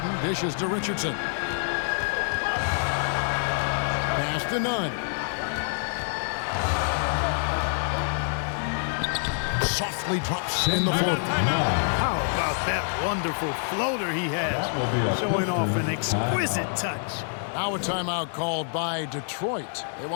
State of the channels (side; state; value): right; silent; digital silence